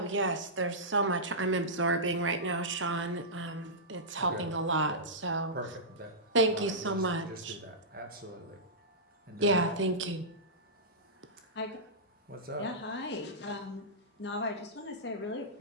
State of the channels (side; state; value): both; normal; correlation -0.15